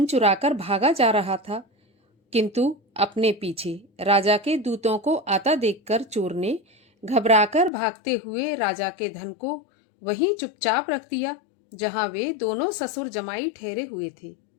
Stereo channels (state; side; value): drops out; right; at 7.7 s